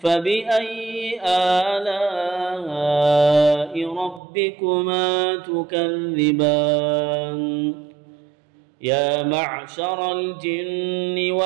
آلاء ربكما تكذبان يا معشر الجن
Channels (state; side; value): drops out; left; at 4.2 s